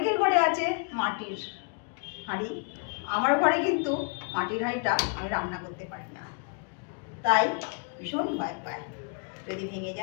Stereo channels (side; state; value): right; quieter; 39.1 dB